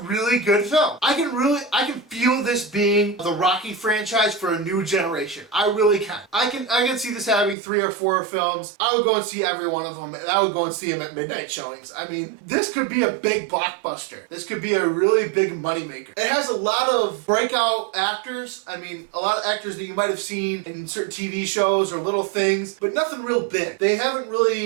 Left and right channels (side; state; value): left; drops out; at 7.6 s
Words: good film. I can feel this being the Rocky franchise for a new generation. I really can. I can see this having 3 or 4 films. I would go and see every one of them, and I would go and see them at midnight showings. I mean, this could be a big blockbuster. This could be a really big moneymaker. It has a lot of breakout actors. I mean, a lot of actors that you might have seen in certain TV shows or little things, but nothing real big. They haven't